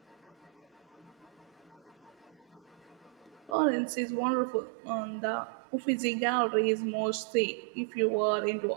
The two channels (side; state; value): left; drops out; at 3.6 s